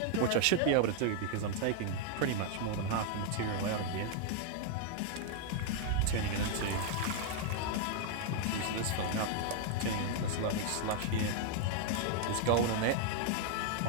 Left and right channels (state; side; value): different; both; correlation 0.00